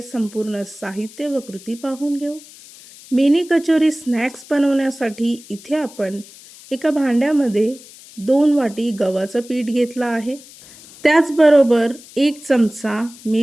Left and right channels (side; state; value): left; noise; hiss, 20 dB below the sound